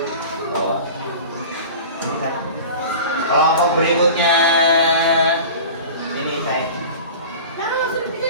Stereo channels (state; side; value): inverted; both; correlation -0.37